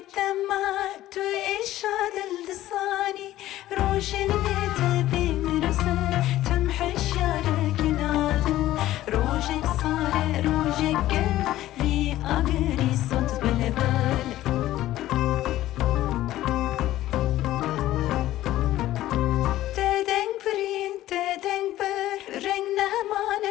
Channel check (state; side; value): quieter; right; 14.7 dB